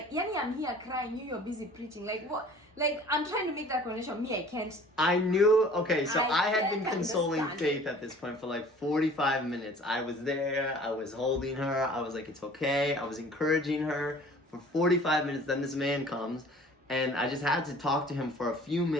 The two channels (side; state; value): both; normal; correlation 0.49